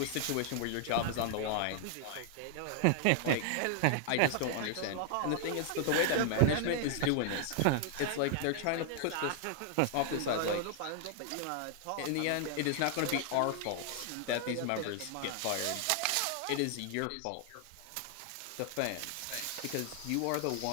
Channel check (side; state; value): both; different; correlation 0.00